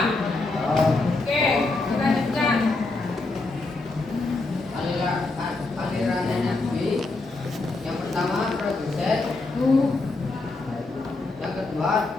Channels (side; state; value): right; quieter; 3.3 dB